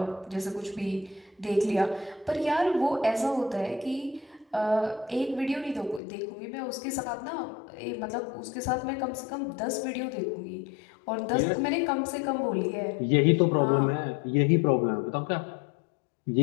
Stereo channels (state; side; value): drops out; right; at 6.0 s